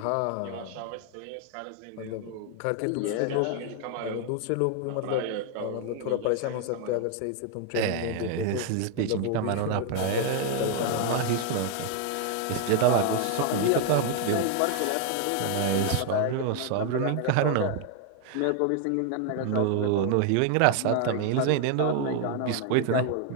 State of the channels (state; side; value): different; both; correlation 0.00